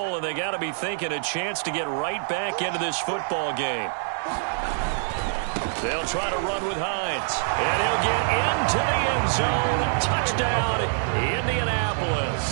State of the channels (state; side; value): silent; left; 62 dB below the other